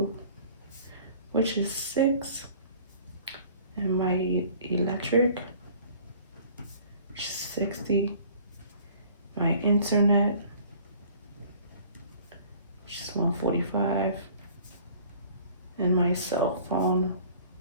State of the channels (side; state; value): both; inverted; correlation -0.51